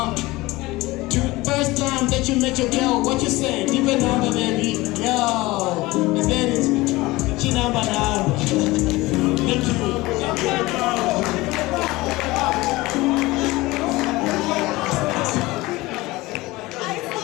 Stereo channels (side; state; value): right; quieter; 20.4 dB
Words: First time that you met your girl, what you say? Keep your number, baby. Yo, let's get it. number now. Thank you.